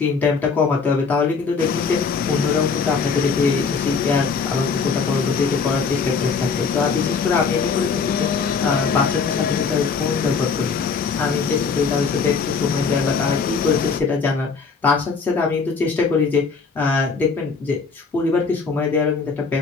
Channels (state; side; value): quieter; right; 5.1 dB